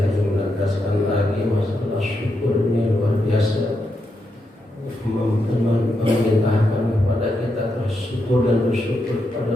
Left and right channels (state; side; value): normal; both; correlation 0.83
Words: ingin menegaskan lagi masalah syukur ini luar biasa, memerintahkan kepada kita bersyukur dan bersyukur